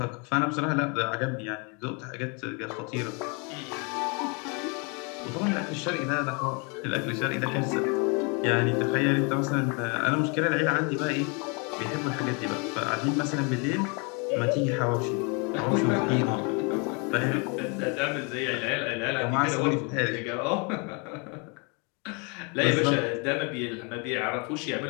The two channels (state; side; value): quieter; right; 33.1 dB